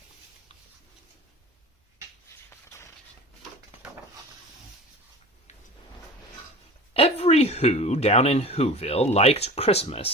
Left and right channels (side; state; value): both; normal; correlation 0.37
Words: Every Who down in Whoville liked